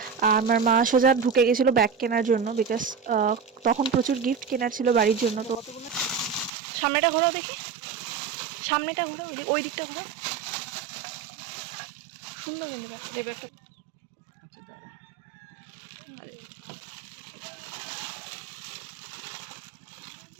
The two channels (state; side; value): drops out; left; at 6.5 s